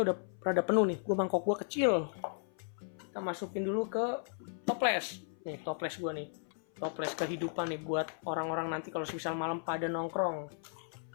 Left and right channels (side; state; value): right; silent; 54 dB below the other